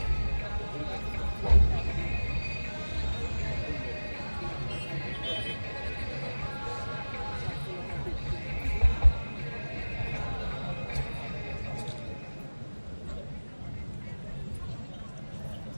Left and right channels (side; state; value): both; inverted; correlation -1.00